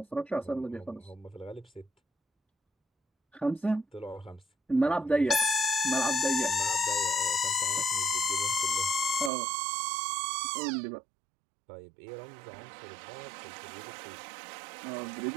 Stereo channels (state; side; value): drops out; left; at 9.3 s